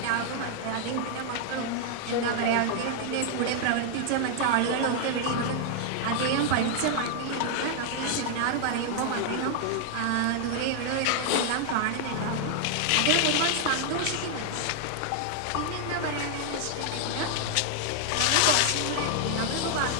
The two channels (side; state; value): both; different; correlation 0.00